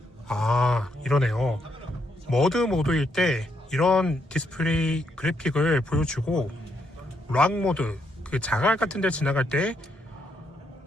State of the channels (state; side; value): normal; both; correlation 0.76